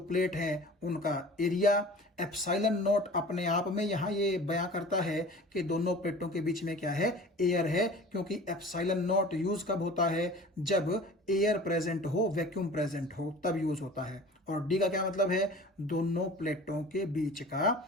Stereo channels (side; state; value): both; normal; correlation 0.42